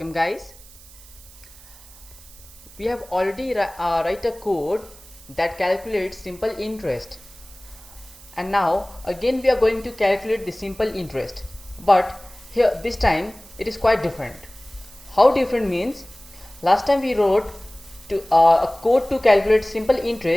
guys. We have already write a code that calculates simple interest, and now again we are going to calculate the simple interest, but here this time it is quite different. How different means, last time we wrote a code to calculate simple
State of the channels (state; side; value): noise; right; hiss, 22 dB below the sound